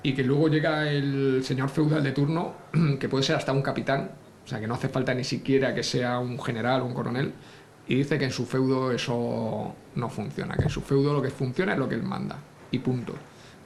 y que luego llega el señor feudal de turno, que puede ser hasta un capitán, o sea que no hace falta ni siquiera que sea un general o un coronel, y dice que en su feudo eso no funciona, que en su feudo lo que funciona es lo que él manda, y punto,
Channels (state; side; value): identical; both; correlation 1.00